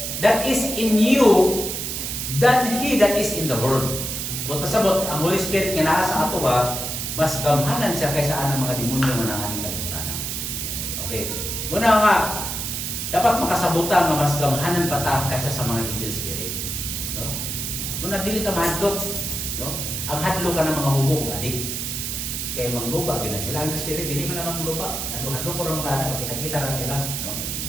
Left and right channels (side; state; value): right; noise; hiss, 3 dB below the sound